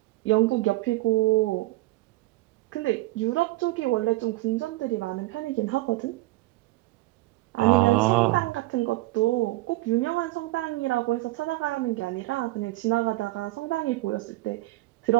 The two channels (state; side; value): quieter; left; 19.2 dB